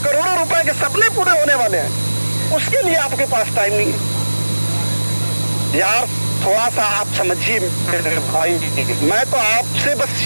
करोड़ों रुपए के सपने पूरे होने वाले हैं, उसके लिए आपके पास टाइम नहीं है। यार थोड़ा सा आप समझिए मेरे भाई, मैं तो आपसे बस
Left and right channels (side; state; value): both; inverted; correlation -1.00